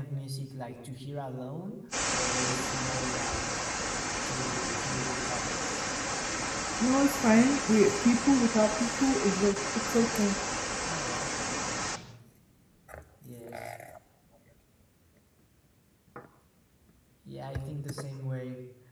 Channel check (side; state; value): both; identical; correlation 1.00